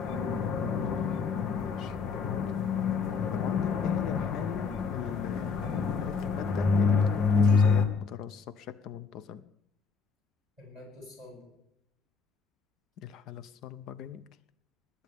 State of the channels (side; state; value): right; quieter; 5.2 dB